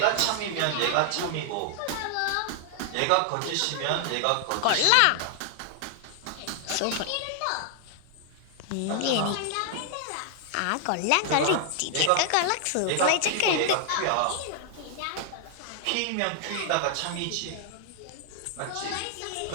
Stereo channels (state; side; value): different; both; correlation 0.00